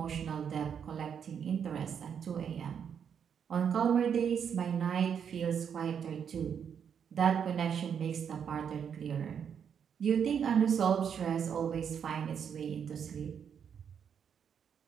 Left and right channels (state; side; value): quieter; left; 7.7 dB